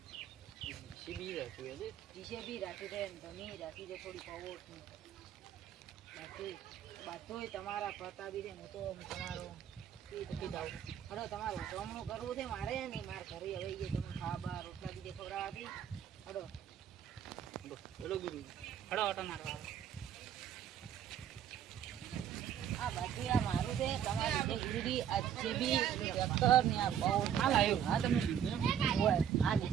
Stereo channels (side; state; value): left; quieter; 9.2 dB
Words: સીબી રાખ્યું હે જીસીબી રાખી દે તમે રાખી દે થોડી પાવર બાકી બધું તમારા પ્રતાપી દે હું તો તમારો હલો તમારું જમણું કરવું છે મારે નહીં મારે ઘરે હવે એ તમે ખાવા રોટલા બીજે ખવડાવવાથી હલો હેલો ગુરુ હડો ઓટો મારવા આ બાકી આ મારું છે તમારી જે ગુરુજી આ જેબી ડોક્ટર ને આ બહુ હાલ આવ્યો હા તમે હોય આ